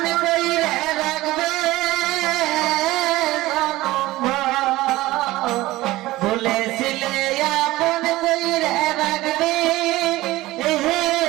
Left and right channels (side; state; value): left; quieter; 18.0 dB